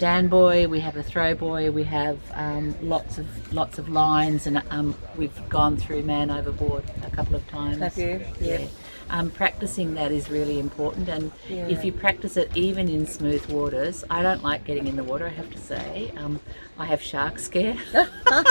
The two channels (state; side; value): inverted; both; correlation -1.00